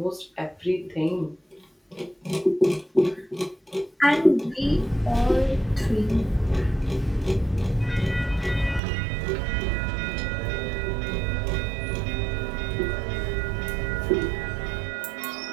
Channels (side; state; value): left; drops out; at 8.8 s